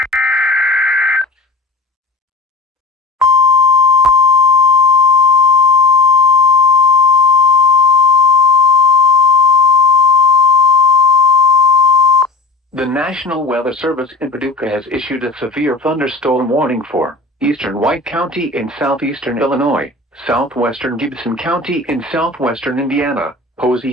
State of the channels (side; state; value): right; quieter; 3.7 dB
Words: The National Weather Service in Paducah has issued a severe thunderstorm warning for eastern White County in southeastern Illinois, southwestern Gibson County in southwestern Indiana,